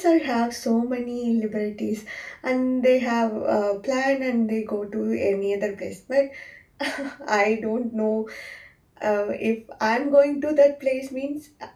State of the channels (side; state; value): both; identical; correlation 1.00